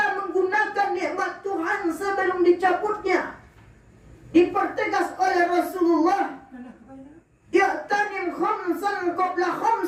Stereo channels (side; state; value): both; identical; correlation 1.00